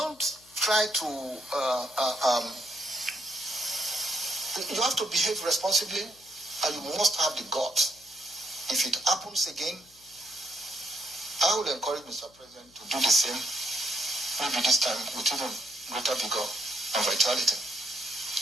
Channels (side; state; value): left; noise; hum, 29 dB below the sound